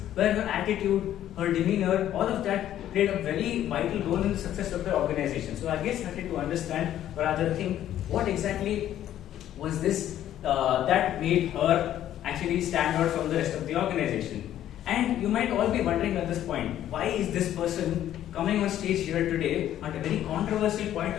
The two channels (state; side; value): quieter; right; 11.8 dB